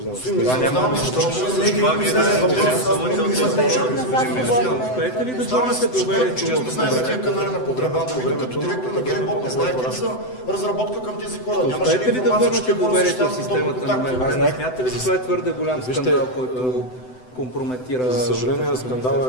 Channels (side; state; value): right; late; 7.9 ms